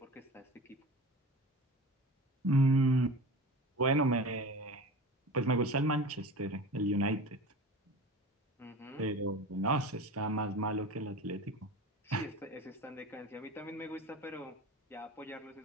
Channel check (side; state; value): both; normal; correlation 0.34